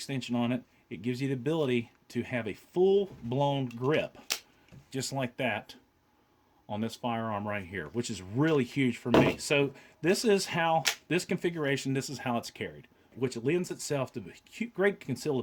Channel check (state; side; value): identical; both; correlation 1.00